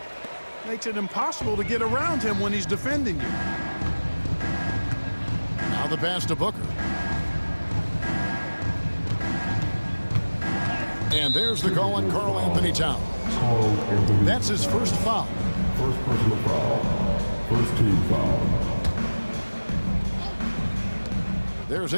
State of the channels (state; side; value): inverted; both; correlation -1.00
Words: makes it impossible to get around him when he's defending you. Now the pass to Booker. And there's the call on Karl Anthony Towns. That's his first foul. First personal foul. First team foul. There's